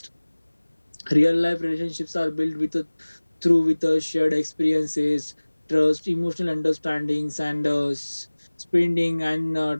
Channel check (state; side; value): inverted; both; correlation -1.00